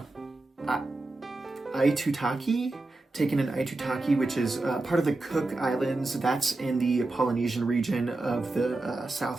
know, Aitutaki? Taken in Aitutaki, which is part of the Cook Islands. That's in the Polynesian region of the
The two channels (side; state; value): left; quieter; 3.0 dB